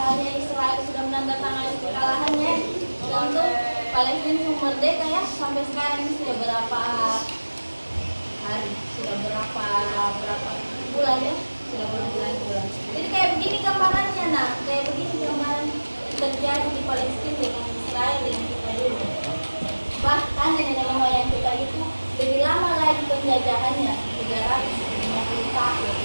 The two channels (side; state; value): both; inverted; correlation -1.00